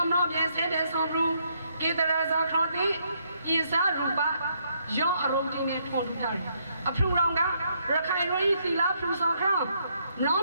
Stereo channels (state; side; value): inverted; both; correlation -0.73